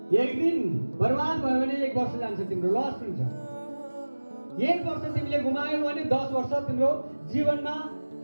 एक दिन बर्बाद भयो भने 1 वर्ष जान्छ, तिम्रो लस हुन्छ। 1 वर्ष तिमीले गुमायौ भने 10 वर्ष तिम्रो जीवनमा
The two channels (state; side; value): inverted; both; correlation -1.00